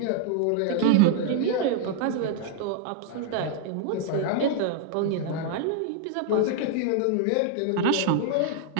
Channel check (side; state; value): both; different; correlation 0.00